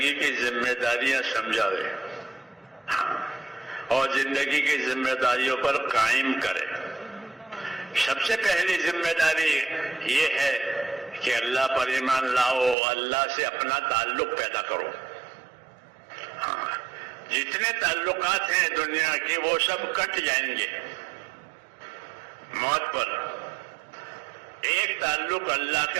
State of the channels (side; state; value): left; drops out; at 12.8 s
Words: کی ذمہ داریاں سمجھاوے اور زندگی کی ذمہ داریوں پر قائم کرے. سب سے پہلی ذمہ داری یہ ہے کہ اللہ پر ایمان لاؤ، اللہ سے اپنا تعلق پیدا کرو. جتنے تعلقات ہیں دنیا کے وہ سب کٹ جائیں گے موت پر. ایک تعلق اللہ